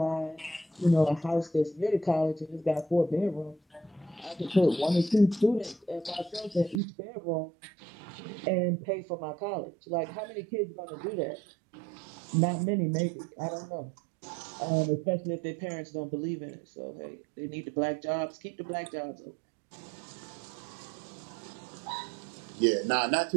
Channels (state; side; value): drops out; left; at 6.8 s